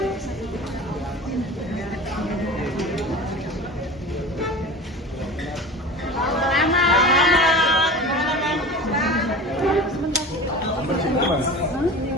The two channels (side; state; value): both; normal; correlation 0.35